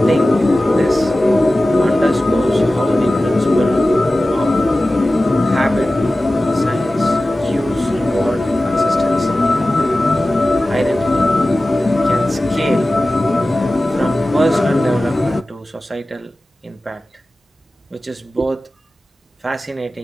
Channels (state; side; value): normal; both; correlation 0.96